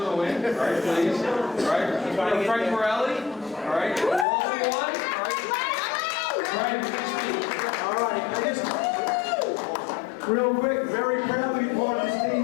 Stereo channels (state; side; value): drops out; right; at 4.2 s